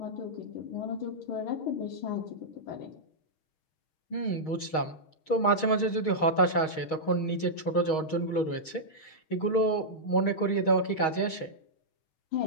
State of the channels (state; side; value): late; right; 6.3 ms